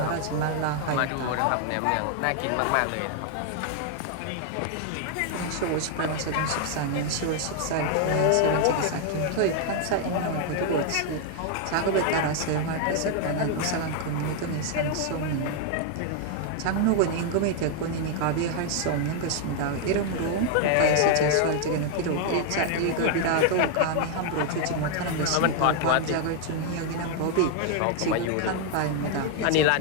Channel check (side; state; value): both; different; correlation 0.00